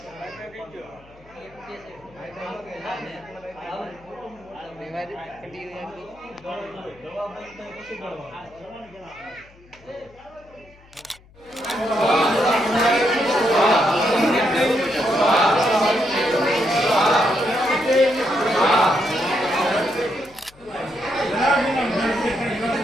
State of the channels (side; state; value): left; noise; hum, 26 dB below the sound